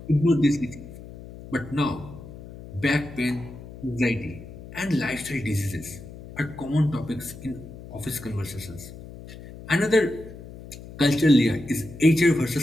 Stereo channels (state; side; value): noise; left; hum, 15 dB below the sound